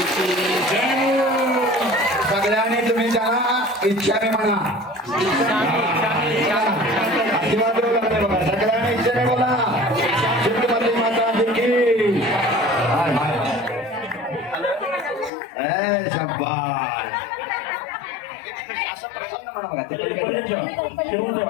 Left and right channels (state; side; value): drops out; right; at 15.3 s